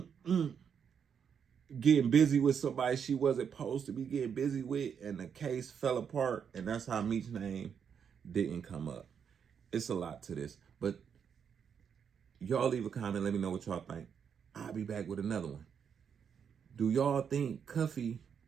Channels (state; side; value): quieter; left; 7.3 dB